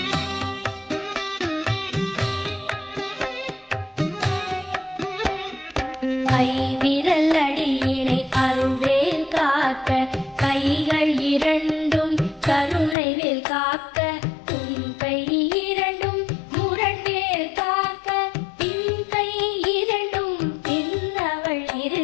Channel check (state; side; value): drops out; right; at 13.0 s